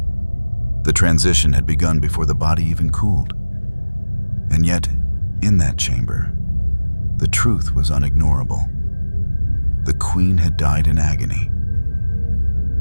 The transition had begun before the body even cooled. And yet, in that chamber, the truth was unignorable. The Queen had died in agony.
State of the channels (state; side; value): inverted; both; correlation -1.00